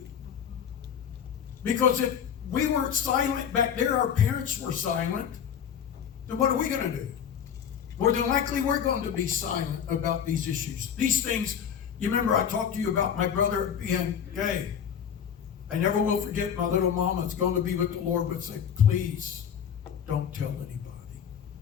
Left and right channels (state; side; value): quieter; right; 8.2 dB